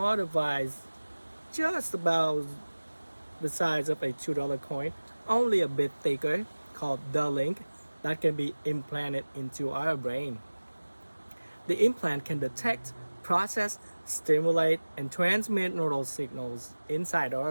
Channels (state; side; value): inverted; both; correlation -1.00